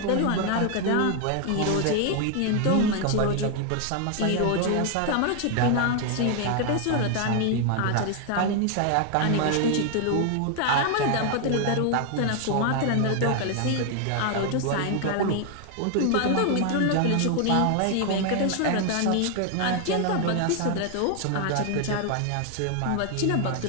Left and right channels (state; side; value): different; both; correlation 0.00